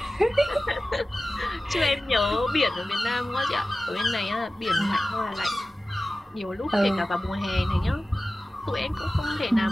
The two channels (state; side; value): normal; both; correlation 0.95